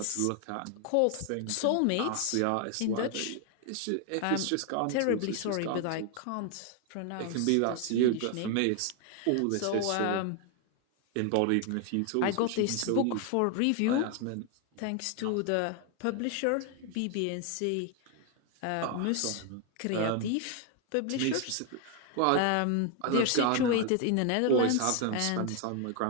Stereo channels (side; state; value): both; different; correlation 0.00